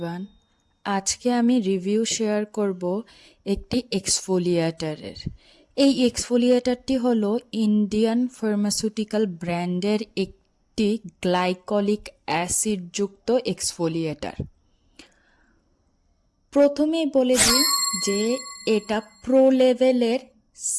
আজকে আমি review share করব একটি এক্সফোলিয়েটারের। এই এক্সফোলিয়েটারটি হলো ইন্ডিয়ান ফার্মাসিউটিক্যাল ব্র্যান্ডের একটি গ্লাইকলিক অ্যাসিডযুক্ত এক্সফোলিয়েটার। প্রথমেই বলে দিই যে এটা প্রো লেভেলের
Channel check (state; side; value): identical; both; correlation 1.00